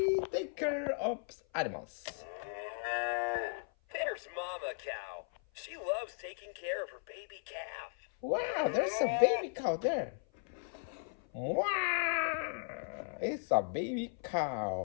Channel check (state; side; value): silent; right; 53 dB below the other